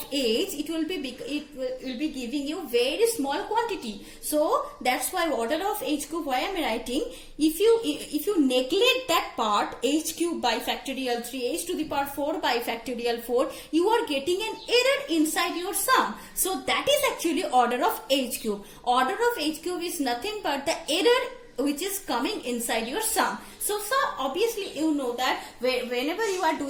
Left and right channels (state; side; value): identical; both; correlation 1.00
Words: h, it will be giving you very small quantity. So that's why order of h cube. Why I am writing, if you neglect that part, h cube by factorial 3, h to the power 4 by factorial 4, you are getting an error inside your sum. So that is actually order of h cube. Order of h cube is nothing but the error which is coming inside your sum. So obviously you know that whenever you are